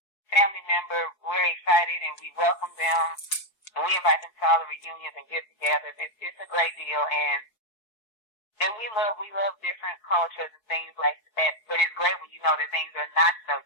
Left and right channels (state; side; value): late; right; 4.7 ms